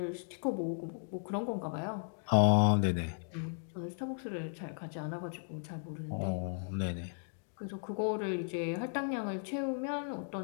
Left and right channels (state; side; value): silent; right; digital silence